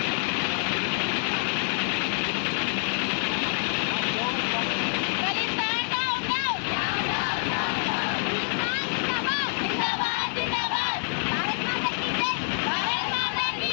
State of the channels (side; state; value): right; silent; 60 dB below the other